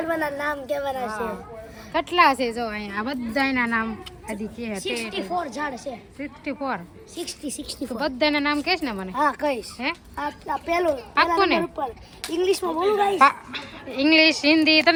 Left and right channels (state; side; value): identical; both; correlation 1.00